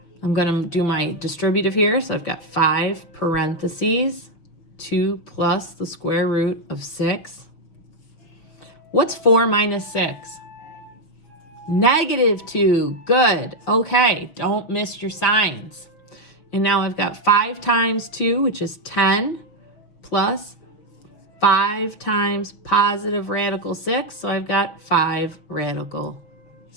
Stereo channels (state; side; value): late; right; 6.2 ms